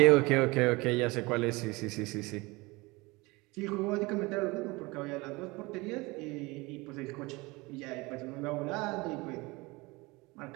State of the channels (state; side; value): quieter; left; 23.8 dB